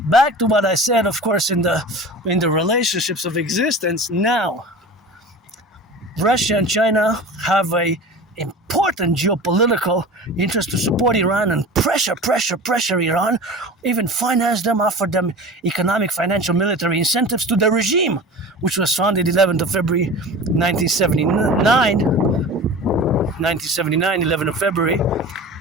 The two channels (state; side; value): normal; both; correlation 0.35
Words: to what I said, of course, in the relationships of existence now, Russia and China have a important geopolitical interest to support Iran and pressure Iran, even finance them, offer them economic, financial, military incentives to the regime, which was founded 11th of February 1979, 11th of February.